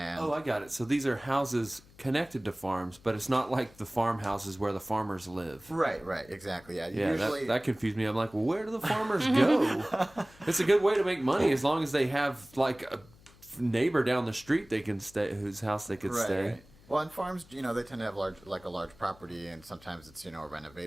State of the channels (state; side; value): noise; left; hum, 25 dB below the sound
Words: Oh, I got it. So these are houses connected to farms, but it's not like the farmhouses where the farmers live. right, exactly. Yeah, Yeah, usually that confused me. I'm like, well, where do the farmers go? It's a good way to make money as long as they have like a neighbor down the street they can stay, whose house they could stay. Right. Well, on farms, they tend to have a large property, and sometimes it's a